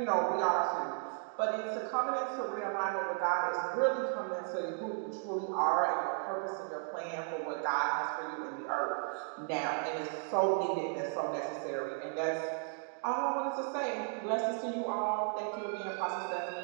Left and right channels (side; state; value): left; silent; 55 dB below the other